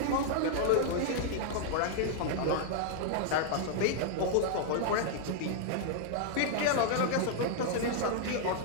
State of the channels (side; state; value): both; different; correlation -0.01